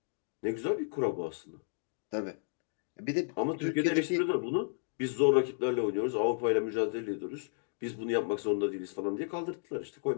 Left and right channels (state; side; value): silent; right; digital silence